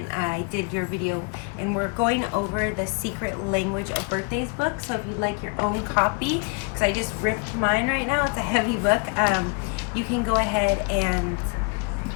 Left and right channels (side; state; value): right; quieter; 33.5 dB